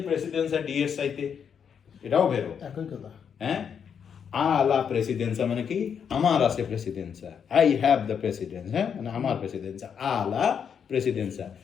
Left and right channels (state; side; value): quieter; right; 7.4 dB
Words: প্রেসিডেন্সা ডি এর চাইতে, এটাও ভেরো। একই কথা। হ্যাঁ, আলা প্রেসিডেন্সা মানে কি, আমার আছে প্রেসিডেন্সা, আই হ্যাভ দ্য প্রেসিডেন্স, হ্যাঁ, মানে আমার প্রেসিডেন্সা, আলা প্রেসিডেন্সা।